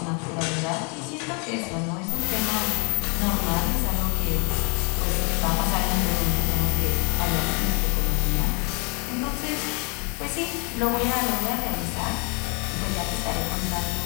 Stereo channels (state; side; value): quieter; right; 33.9 dB